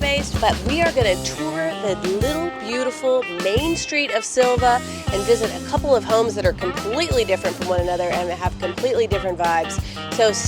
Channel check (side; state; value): both; identical; correlation 1.00